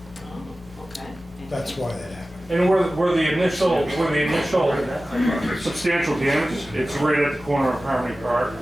Oh, okay. That's why that happened. And where the initial substantial damage, it's right at the corner of Harmony Park.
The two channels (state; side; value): noise; left; hum, 24 dB below the sound